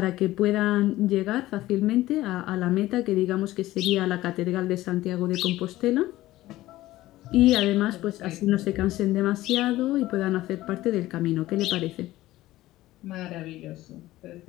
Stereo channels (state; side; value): quieter; right; 16.3 dB